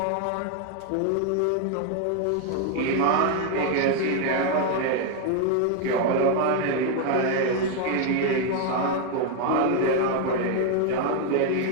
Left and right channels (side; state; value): both; different; correlation 0.01